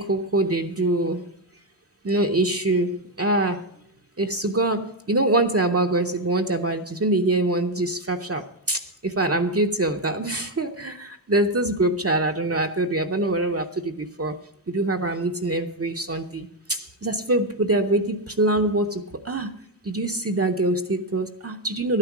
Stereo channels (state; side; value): normal; both; correlation 0.06